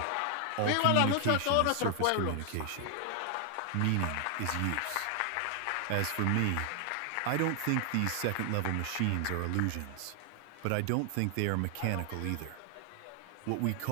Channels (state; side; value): different; both; correlation 0.00